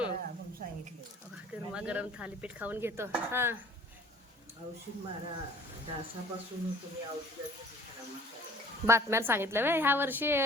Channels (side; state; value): both; normal; correlation 0.51